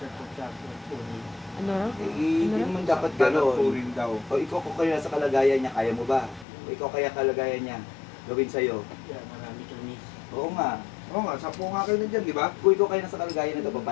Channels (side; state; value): right; drops out; at 6.5 s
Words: ng puno. Ano raw? Hindi naman dapat Gano'n. gano'n. Purin daw. O ikaw kung kaya nasa kalagayan niya, kaya mo ba? O ikaw kaya kalagayan niya, gawin sa'yo. Kaya marami kami. Oo nga. Oo nga, 10 nga kayo nandiyan, di ba? Kung ikaw kaya nasa kalagayan na